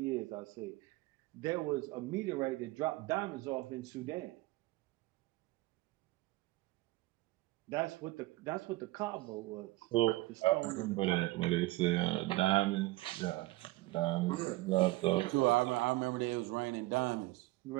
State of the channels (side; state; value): left; quieter; 19.7 dB